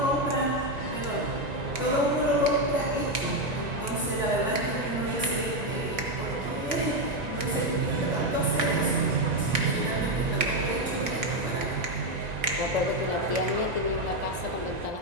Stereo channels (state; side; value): late; left; 1.9 ms